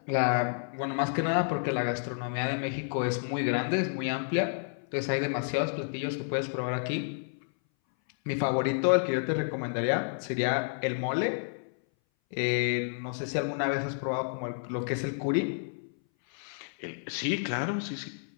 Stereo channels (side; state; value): right; silent; 58 dB below the other